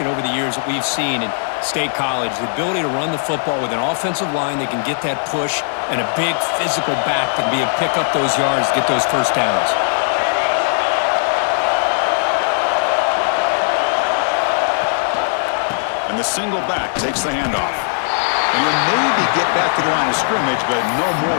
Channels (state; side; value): silent; right; digital silence